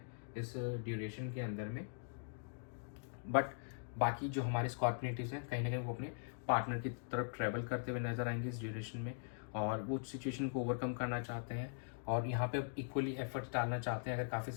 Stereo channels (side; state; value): right; silent; digital silence